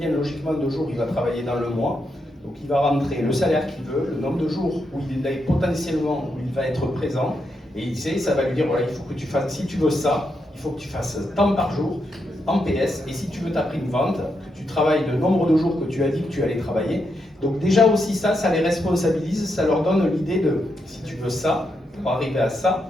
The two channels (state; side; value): normal; both; correlation 0.82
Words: logiquement de jours il va travailler dans le mois. Donc il va rentrer le salaire qu'il veut, le nombre de jours où il est potentiellement où il va être présent. Et il sait, ça va lui dire voilà, il faut que tu fasses, si tu veux ça, il faut que tu fasses tant par jour en PS. Et si tu veux ta prime vente, que tu travailles le nombre de jours que tu as dit que tu allais travailler. Donc déjà aussi ça les responsabilise, ça leur donne l'idée de si tu veux ça, pour arriver à ça,